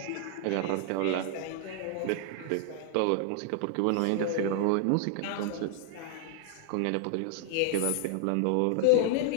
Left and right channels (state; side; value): different; both; correlation 0.00